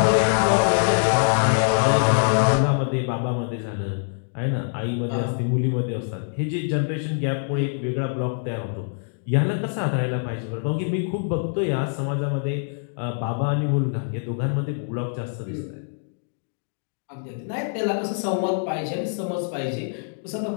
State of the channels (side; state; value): right; silent; digital silence